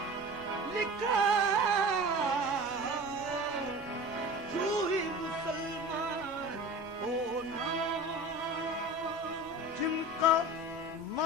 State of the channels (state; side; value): normal; both; correlation 0.35